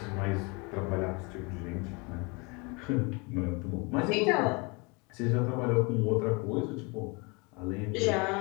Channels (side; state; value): right; quieter; 29.4 dB